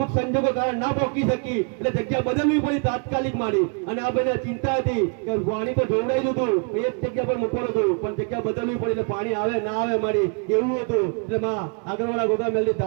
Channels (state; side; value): quieter; left; 39.5 dB